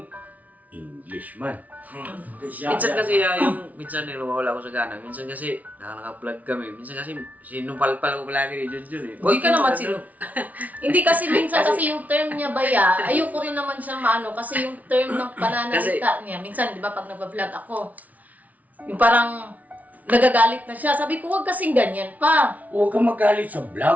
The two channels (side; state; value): left; late; 0.072 ms